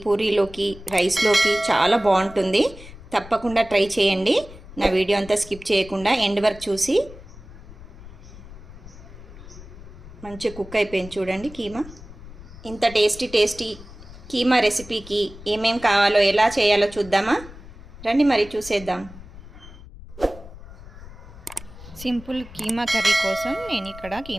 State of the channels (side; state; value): left; noise; rumble, 17 dB below the sound